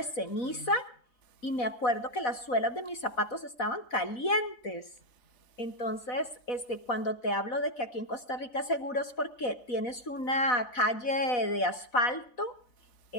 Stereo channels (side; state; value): right; late; 4.0 ms